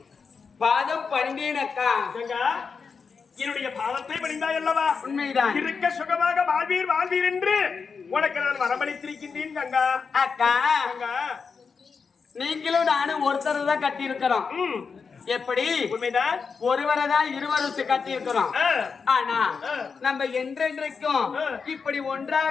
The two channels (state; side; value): quieter; right; 5.4 dB